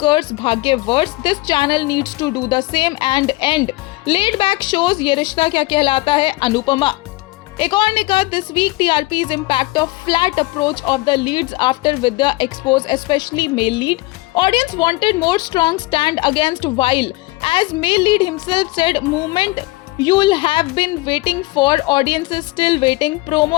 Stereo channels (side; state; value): right; quieter; 21.4 dB